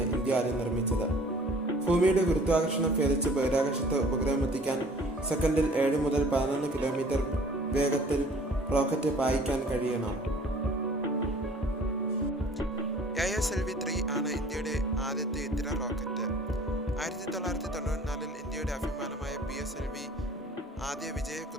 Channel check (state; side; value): normal; both; correlation 0.51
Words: ഇന്ത്യ ആദ്യം നിർമ്മിച്ചത്. ഭൂമിയുടെ ഗുരുത്വാകർഷണം ഭേദിച്ച് ബഹിരാകാശത്ത് ഉപഗ്രഹം എത്തിക്കാൻ സെക്കൻഡിൽ 7 മുതൽ 11 കിലോമീറ്റർ വേഗത്തിൽ റോക്കറ്റ് പായിക്കാൻ കഴിയണം. ASLV-3 ആണ് ഇന്ത്യയുടെ ആദ്യത്തെ ഇത്തര റോക്കറ്റ്. 1994 ഇന്ത്യയുടെ അഭിമാനമായ PSLV ആദ്യ